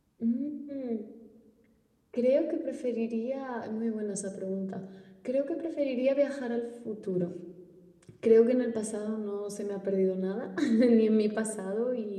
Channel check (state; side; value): identical; both; correlation 1.00